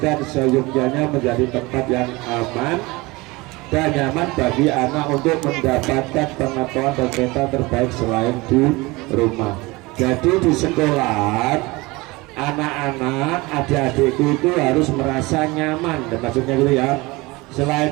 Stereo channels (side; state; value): left; quieter; 22.8 dB